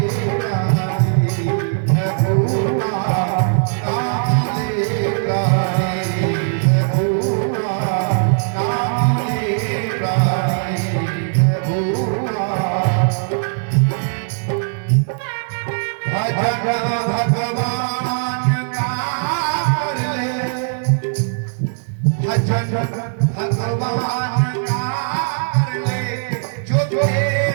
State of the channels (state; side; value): silent; left; digital silence